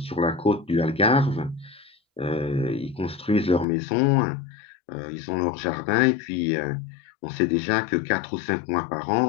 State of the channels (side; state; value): right; drops out; at 3.7 s